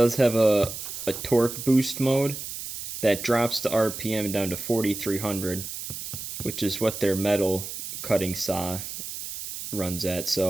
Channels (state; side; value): noise; right; hiss, 8 dB below the sound